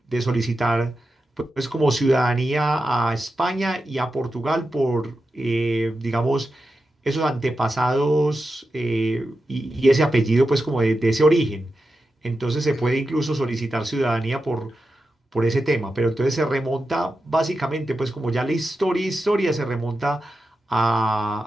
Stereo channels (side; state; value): both; normal; correlation 0.90